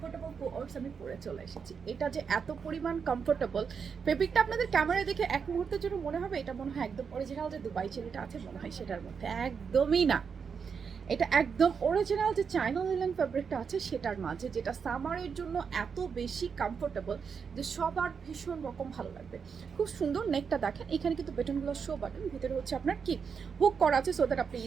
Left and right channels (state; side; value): quieter; left; 6.2 dB